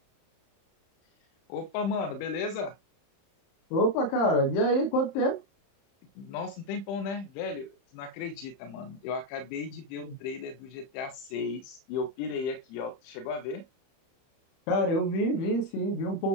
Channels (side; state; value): right; late; 31 ms